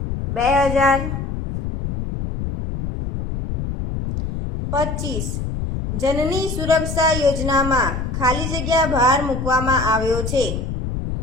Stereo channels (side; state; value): left; noise; rumble, 4 dB below the sound